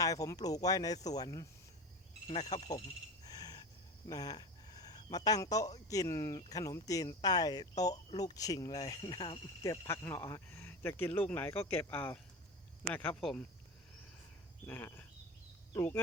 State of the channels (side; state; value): both; normal; correlation 0.28